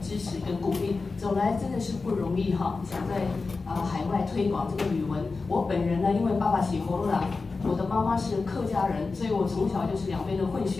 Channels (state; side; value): quieter; right; 4.1 dB